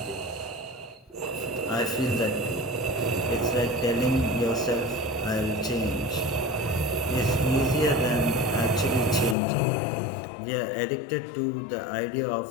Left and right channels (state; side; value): drops out; right; at 9.3 s